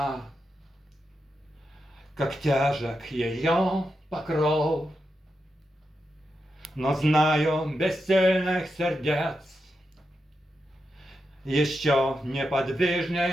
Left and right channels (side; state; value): both; normal; correlation 0.87